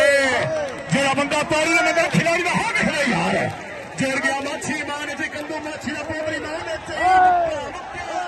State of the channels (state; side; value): identical; both; correlation 1.00